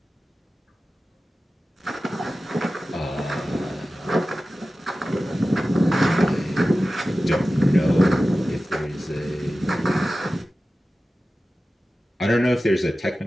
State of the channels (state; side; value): normal; both; correlation 0.95